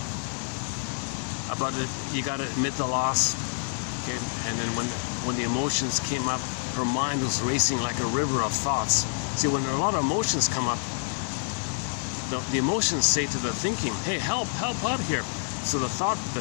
About it, you got to admit the loss, okay? And then when the emotions came up, her mind was racing like a river of thoughts. See, when a lot of emotions come up, the emotions say to the thinking, "Hey, help out here." So the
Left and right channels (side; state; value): right; silent; digital silence